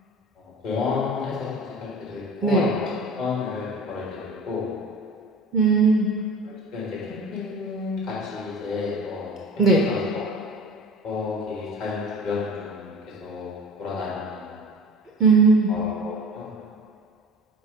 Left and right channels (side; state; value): both; normal; correlation 0.39